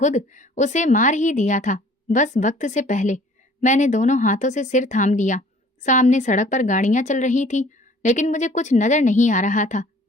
उसे मार ही दिया था, बस वक्त से पहले। मैंने दोनों हाथों से सिर थाम लिया। सामने सड़क पर गाड़ियां चल रही थी, लेकिन मुझे कुछ नजर नहीं आ रहा था।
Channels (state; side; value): normal; both; correlation 0.53